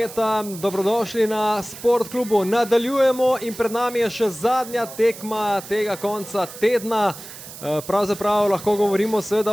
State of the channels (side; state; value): right; noise; hiss, 14 dB below the sound